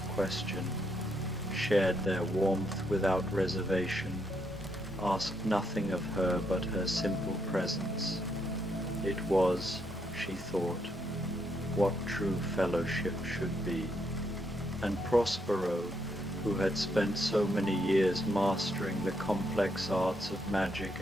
question, shared their warmth without reservation, asked nothing of her but her simple presence. It was, she thought, what true fellowship should be. And Prospero, who had spent so many years mastering the complex arts of magic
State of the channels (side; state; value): both; normal; correlation 0.77